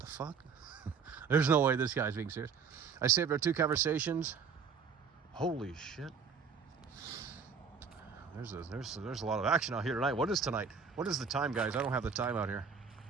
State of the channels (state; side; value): quieter; left; 6.0 dB